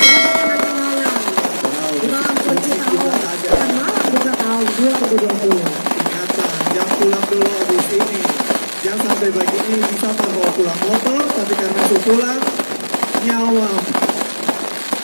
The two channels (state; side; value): inverted; both; correlation -1.00